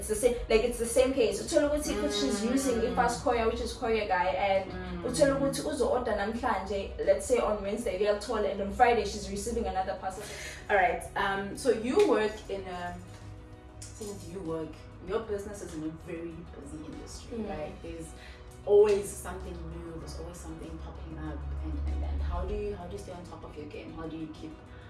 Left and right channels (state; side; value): identical; both; correlation 1.00